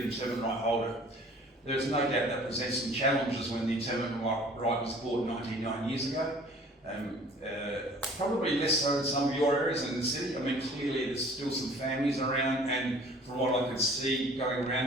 interment right holder. There's no doubt that presents some challenges when the interment right was bought 99 years ago. Probably less so in some of your areas in the city. I mean, clearly there's still some families around, and from what I could see going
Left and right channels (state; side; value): normal; both; correlation 0.50